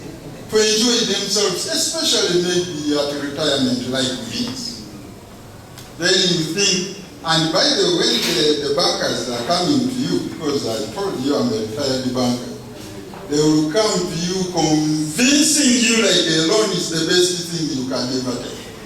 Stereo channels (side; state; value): both; identical; correlation 1.00